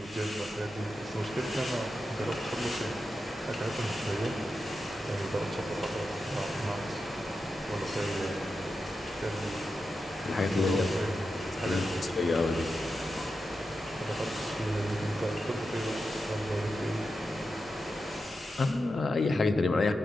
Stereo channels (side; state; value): both; normal; correlation 0.89